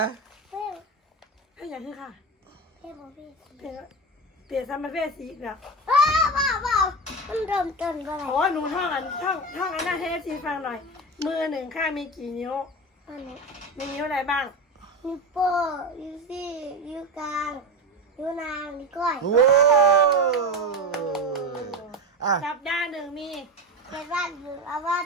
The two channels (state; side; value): normal; both; correlation 0.21